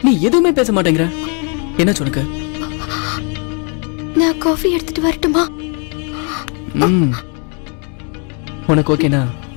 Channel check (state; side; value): quieter; right; 38.0 dB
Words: நீ எதுவுமே பேச மாட்டேங்கிற என்ன உனக்கு நான் காஃபி எடுத்துட்டு வரட்டுமா? உனக்கு ஓகேனா